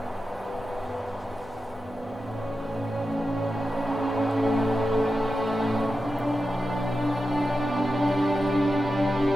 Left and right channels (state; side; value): normal; both; correlation 0.91